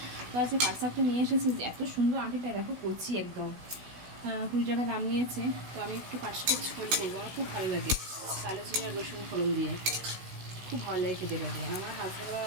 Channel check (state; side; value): late; left; 16 ms